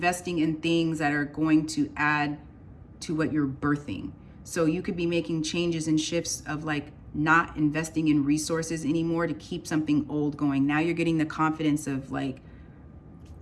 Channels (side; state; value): both; identical; correlation 1.00